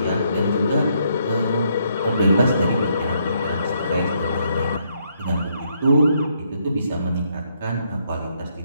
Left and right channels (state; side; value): inverted; both; correlation -0.73